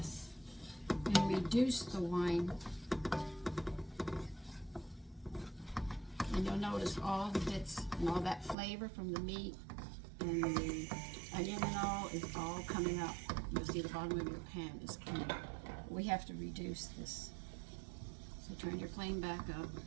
and reduce the wine. And you'll notice all the bits and all that flavor from the meat and the onion and all is all coming up. You'll see the bottom of your pan is coming up. We have to reduce this. So turn your flame back up.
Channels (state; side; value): drops out; left; at 8.6 s